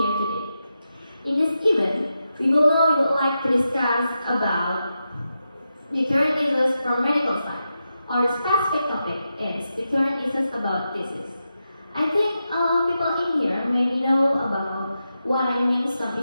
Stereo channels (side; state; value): both; inverted; correlation -0.88